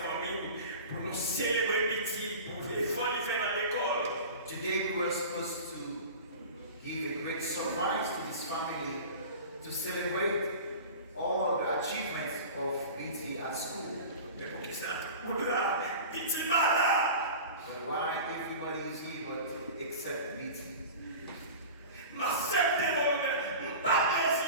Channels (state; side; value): inverted; both; correlation -0.35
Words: pour nous célébrer petit, pour l'effort qu'il fait dans l'école. Today we were supposed to give a great surprise to this family to celebrate all the achievements of BT at school. Mais pour qui ça? Pour là, petit malade. But why everybody is here but except BT? M'accepte volonté, pas